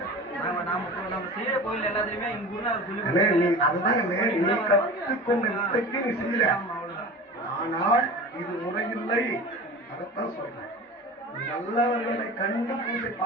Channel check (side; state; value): both; normal; correlation 0.35